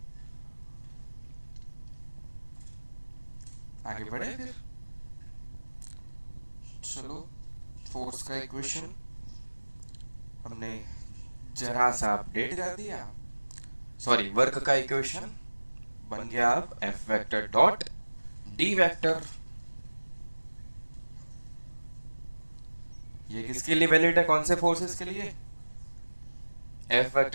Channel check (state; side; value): inverted; both; correlation -1.00